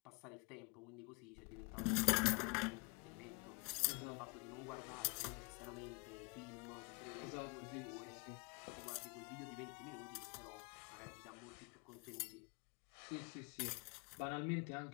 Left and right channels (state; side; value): quieter; right; 30.5 dB